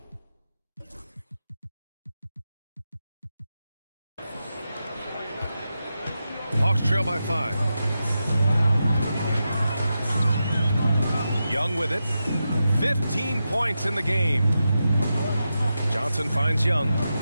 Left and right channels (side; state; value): both; inverted; correlation -0.89